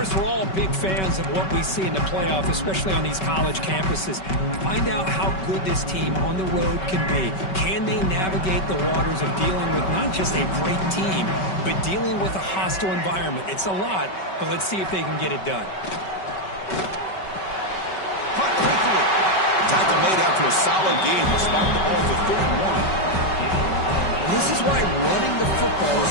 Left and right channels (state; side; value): late; right; 5.3 ms